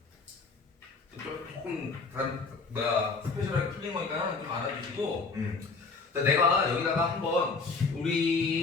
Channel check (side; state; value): right; quieter; 4.3 dB